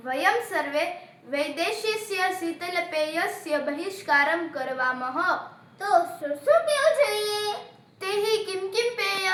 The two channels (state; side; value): identical; both; correlation 1.00